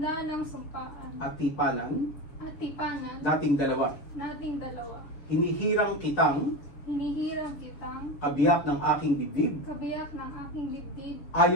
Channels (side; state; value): right; late; 7.3 ms